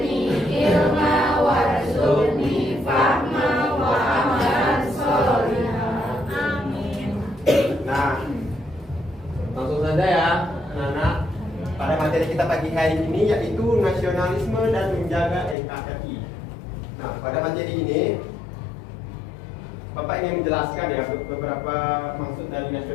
ilma warzuqni fahma wa amalan sholihan. Amin. Nah, langsung saja ya, anak-anak. Pada materi kita pagi hari ini yaitu nasionalisme dan menjaga NKRI. Nah, pada materi ini Bapak ingin menjelaskan ya beberapa maksud dari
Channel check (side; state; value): right; drops out; at 15.6 s